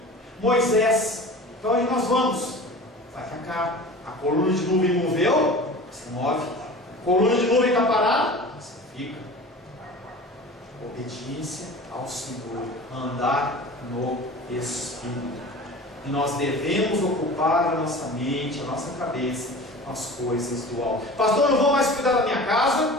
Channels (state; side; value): normal; both; correlation 0.38